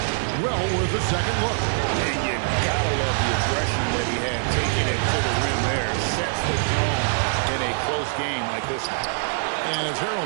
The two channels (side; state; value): left; silent; 63 dB below the other